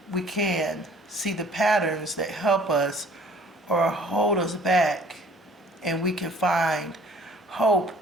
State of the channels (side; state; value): both; normal; correlation 0.54